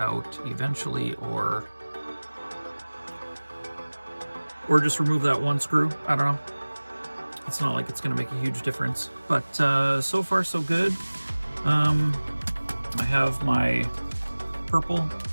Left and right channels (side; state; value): both; inverted; correlation -1.00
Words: eventually, or just remove that one screw. I don't know. It's not like it's going to make a huge difference, but so far so good. I have my purple